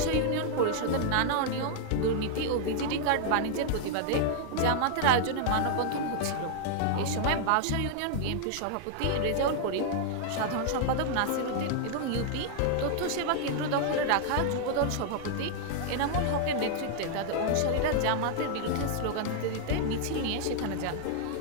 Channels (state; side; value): different; both; correlation -0.01